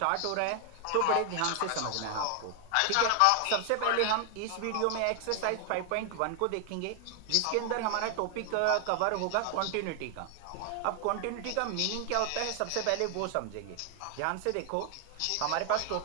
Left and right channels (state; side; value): different; both; correlation 0.00